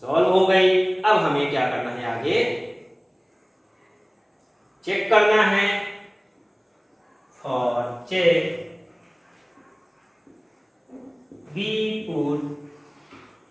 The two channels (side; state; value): both; identical; correlation 1.00